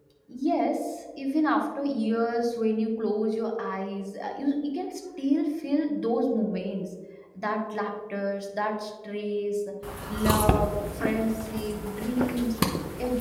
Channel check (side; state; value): both; identical; correlation 1.00